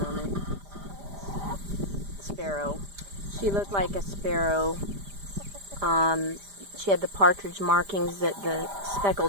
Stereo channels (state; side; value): late; left; 5.0 ms